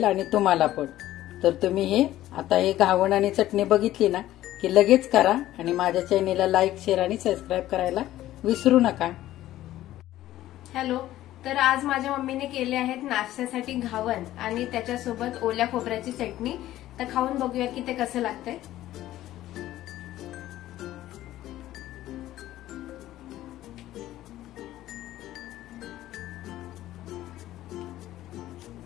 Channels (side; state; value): right; quieter; 14.3 dB